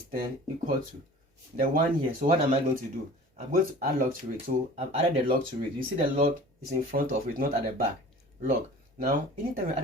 10 equal to the one here. So what am I going to do? I'm going to add log to it. So I've added the log to it. You see the log is in front of it, not at the back. Log. Now, anytime you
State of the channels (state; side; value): normal; both; correlation 0.43